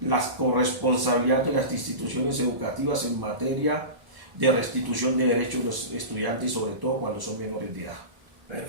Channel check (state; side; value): late; left; 1.0 ms